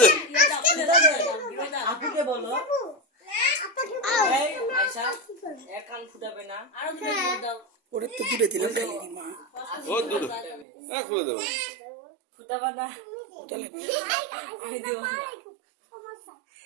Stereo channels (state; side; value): drops out; left; at 10.7 s